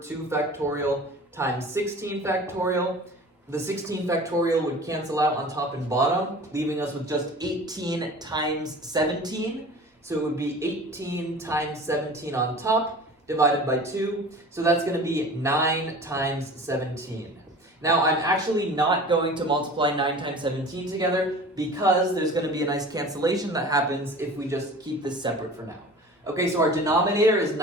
2 factorial times 16 factorial. The 16 factorial would cancel out on top and bottom, leaving us with just 18 times 17. So it would be 18 times 17 on top, divided by 2. So that's going to be 9 times 17. Now, I'm actually not going to multiply 9 times 17 together because there's going to be a nice cancellation that happens if we just keep this separate for now. Okay, so our denominator is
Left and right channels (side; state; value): both; normal; correlation 0.40